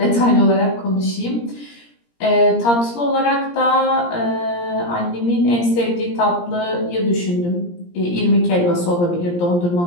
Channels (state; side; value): late; right; 17 ms